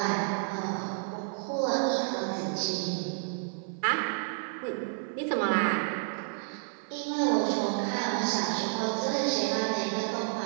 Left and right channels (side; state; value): left; silent; 58 dB below the other